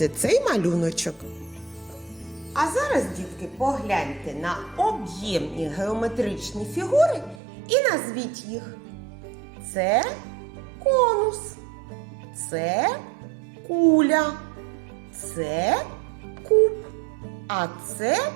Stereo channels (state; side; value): drops out; left; at 7.4 s